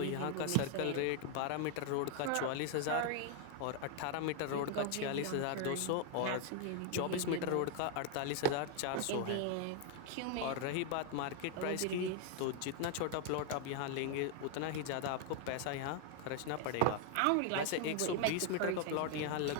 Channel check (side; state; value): both; different; correlation 0.00